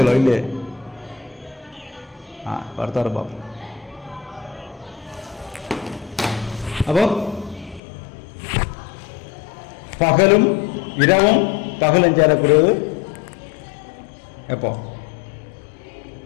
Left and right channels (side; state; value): right; drops out; at 7.8 s